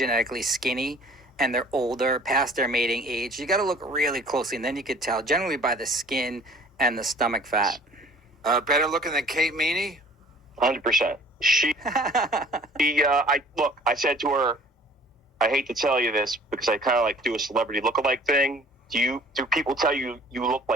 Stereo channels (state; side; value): normal; both; correlation 0.51